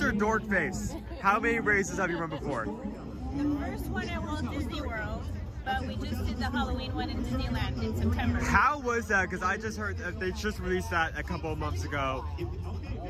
dork face. How many races have you run before? The first one at Walt Disney World, but we just did the Halloween one in Disneyland in September. How was that? Because I just heard that they just released that a couple of months ago.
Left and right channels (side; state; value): both; identical; correlation 1.00